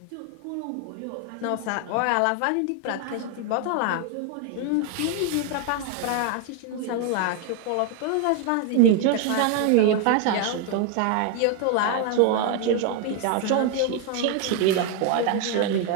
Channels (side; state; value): both; different; correlation 0.00